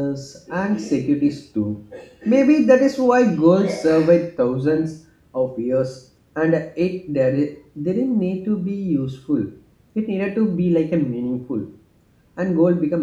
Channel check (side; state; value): both; identical; correlation 1.00